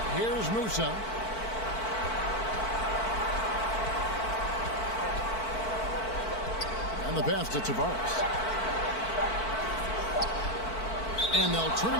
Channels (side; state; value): right; late; 4.5 ms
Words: Here's Musa. And the pass to Tavares. And they'll turn